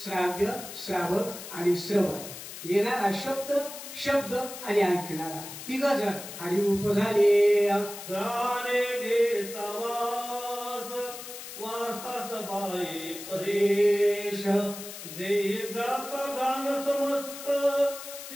श्राव्य श्रावक आणि श्रवण येणारा शब्द शब्द आणि ऐकणारा तिघ जण हरिरूप झाले। गाणे घेता वास वासास बाई परेश देह गाता गान समस्त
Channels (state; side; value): noise; left; hiss, 11 dB below the sound